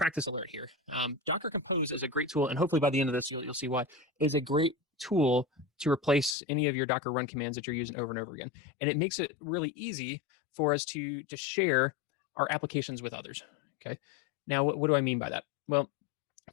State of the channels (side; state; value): right; drops out; at 6.4 s